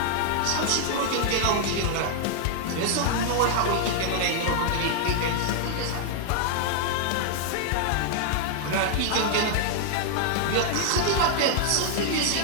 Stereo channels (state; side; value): different; both; correlation 0.00